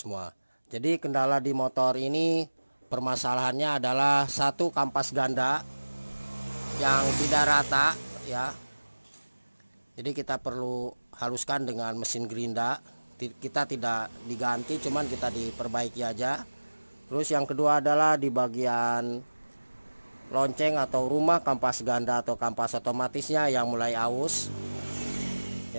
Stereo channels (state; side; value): inverted; both; correlation -1.00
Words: Jadi kendala di motor ini permasalahannya adalah satu, kampas ganda yang tidak rata ya. Jadi kita perlu haluskan dengan mesin gerinda. Kita tidak diganti, cuman kita diperbaiki aja. Terus yang kedua adalah di bagian lonceng atau rumah, kampas ganda atau kampas otomatisnya yang mulai aus